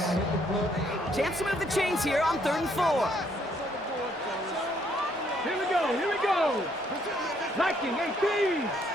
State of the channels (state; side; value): normal; both; correlation 0.69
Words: Chance to move the chains here on 3rd and 4. Here we go. Here we go. Liking 18.